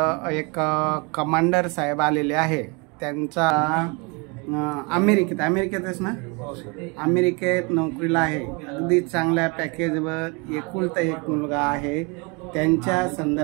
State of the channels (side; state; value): left; quieter; 30.5 dB